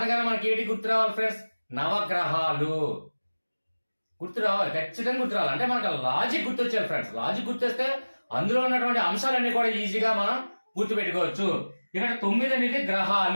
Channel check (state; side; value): inverted; both; correlation -1.00